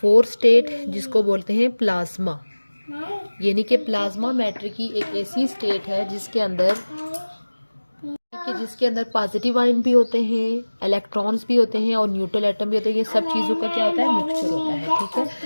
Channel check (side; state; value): both; inverted; correlation -1.00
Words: स्टेट जिसको बोलते हैं प्लाज्मा। यानी कि प्लाज्मा मैटर की एक ऐसी स्टेट है जिसके अंदर पॉजिटिव आयन भी होते हैं, इलेक्ट्रॉन्स भी होते हैं और न्यूट्रल एटम भी होते हैं। ये सब चीज़ों का क्या होता है? मिक्सचर होता है। ठीक है,